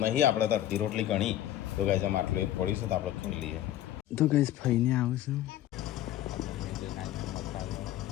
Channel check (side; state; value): right; quieter; 12.9 dB